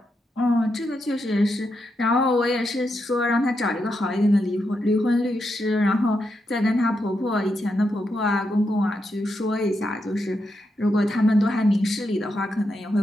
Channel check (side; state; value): both; normal; correlation 0.84